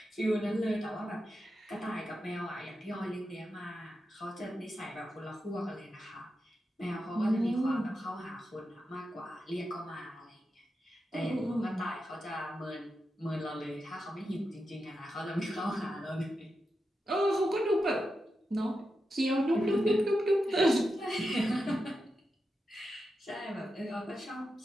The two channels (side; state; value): both; normal; correlation 0.89